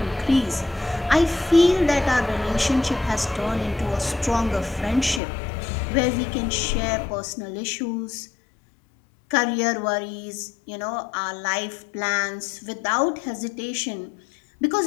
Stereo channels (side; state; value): right; drops out; at 5.2 s